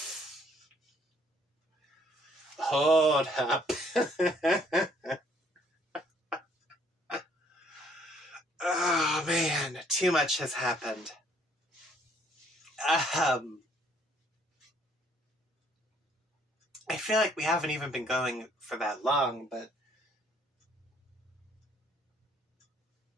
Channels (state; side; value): normal; both; correlation 0.64